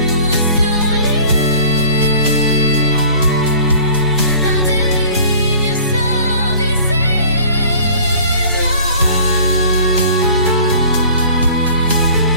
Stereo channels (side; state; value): both; inverted; correlation -0.46